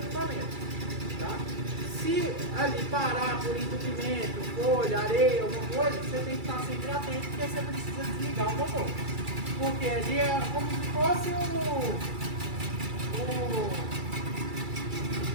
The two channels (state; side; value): late; left; 2.3 ms